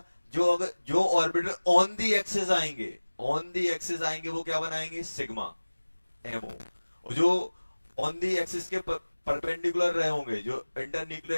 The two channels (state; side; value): inverted; both; correlation -1.00